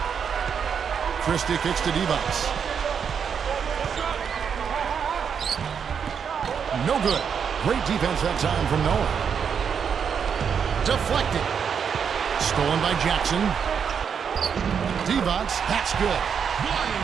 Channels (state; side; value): quieter; left; 7.1 dB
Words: Christie kicks to Divac. No good. Great defense that time from Noah. Deflected. Stolen by Jackson. Divac, that's good.